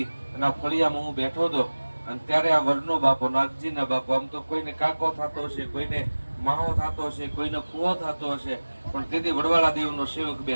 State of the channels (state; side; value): inverted; both; correlation -1.00